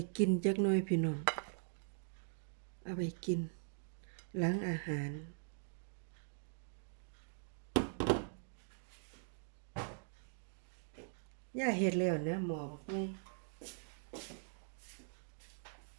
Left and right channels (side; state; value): left; silent; digital silence